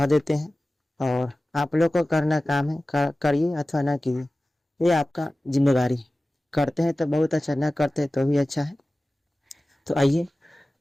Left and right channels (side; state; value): both; normal; correlation 0.97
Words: देते हैं, और आप लोग को करना काम है, करिए अथवा ना कीजिए, ये आपका जिम्मेदारी है। करते हैं तो बहुत अच्छा, ना करते हैं तो भी अच्छा है। तो आइए